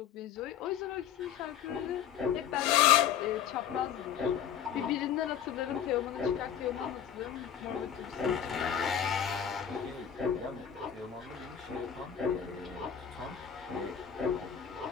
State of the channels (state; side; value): quieter; right; 8.9 dB